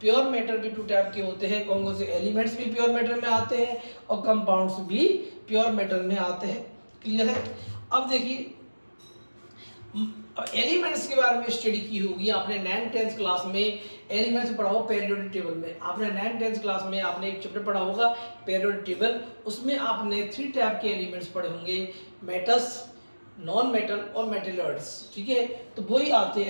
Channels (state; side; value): inverted; both; correlation -1.00